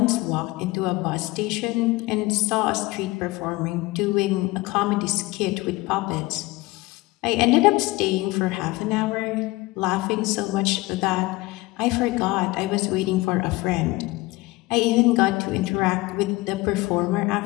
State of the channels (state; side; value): quieter; right; 21.4 dB